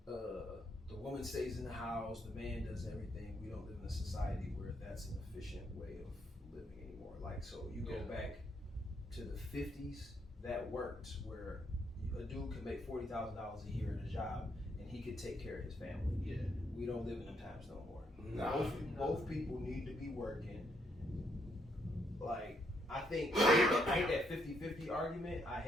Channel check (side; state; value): both; normal; correlation 0.74